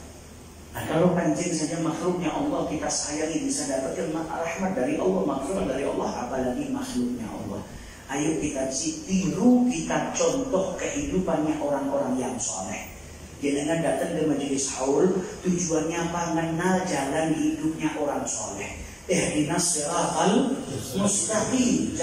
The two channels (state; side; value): identical; both; correlation 1.00